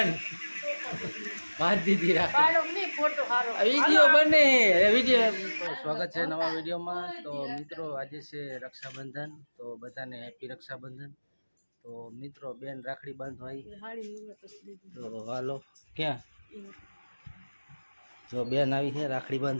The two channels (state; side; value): inverted; both; correlation -1.00